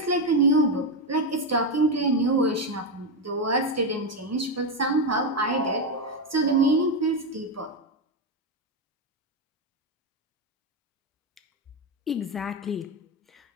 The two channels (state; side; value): normal; both; correlation 0.08